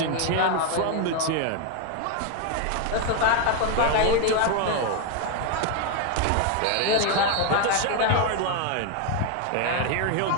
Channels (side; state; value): both; different; correlation 0.01